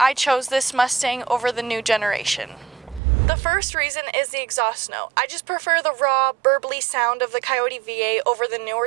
chose this Mustang over the new generation. The first reason is the exhaust note. I just prefer the raw, burbly sound of the Coyote V8 over the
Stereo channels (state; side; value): drops out; left; at 3.0 s